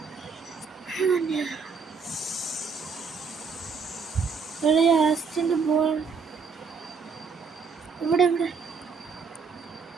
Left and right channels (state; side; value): quieter; left; 5.3 dB